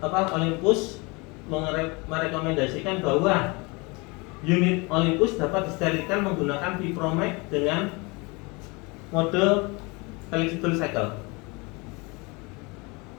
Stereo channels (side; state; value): right; quieter; 27.5 dB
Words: Olympus merekomendasikan bahwa unit Olympus dapat disterilkan menggunakan Vipromax dengan mode flexible cycle.